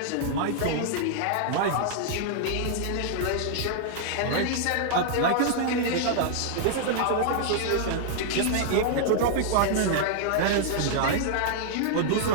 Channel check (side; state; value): both; different; correlation -0.01